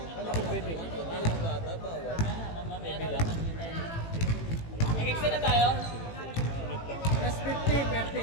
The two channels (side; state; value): right; late; 18 ms